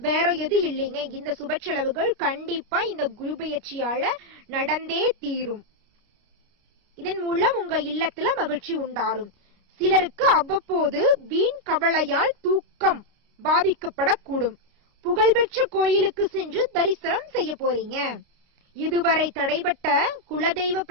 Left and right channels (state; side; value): late; left; 29 ms